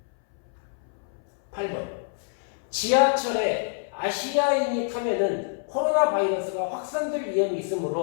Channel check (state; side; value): silent; right; 61 dB below the other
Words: 8번. 지하철에 아시아인이 타면은 코로나 바이러스가 확산될 위험이